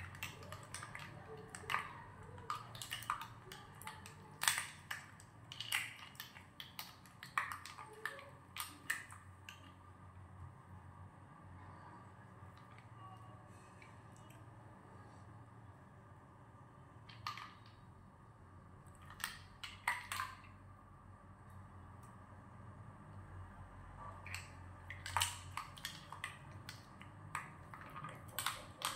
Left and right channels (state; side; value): identical; both; correlation 1.00